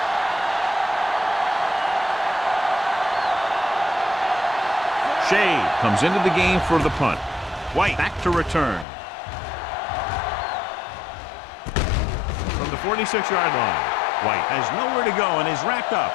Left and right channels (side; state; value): right; drops out; at 8.8 s